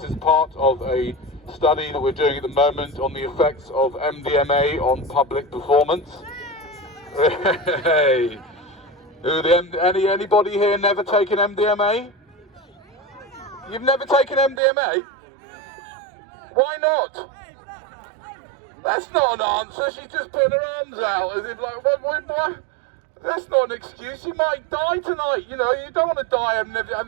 is part of a study that we're doing at the moment on the effects of MDMA on public performance. Hey, anybody here never taken MDMA? You've never taken MDMA? Why not? That's not an answer. She's just putting her arms out as if like, what? That's not an excuse. You might die tonight. You know, you don't want to die. I've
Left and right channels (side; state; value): left; drops out; at 14.6 s